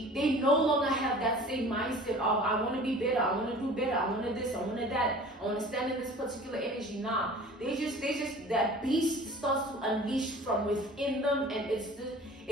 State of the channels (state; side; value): normal; both; correlation 0.44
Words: they no longer have that same mindset of, I want to be better, I want to do better, I want to this, I want to that, I want to stand in this particular energy. Nah, they just that beast starts to unleash from within them, and